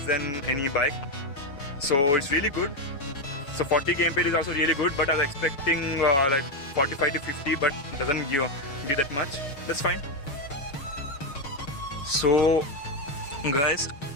than any bike, so it's really good. So 40 kmpl is also really good, but I was expecting 45 to 50, but it doesn't give that much. That's fine. So guys,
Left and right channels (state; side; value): late; right; 7.1 ms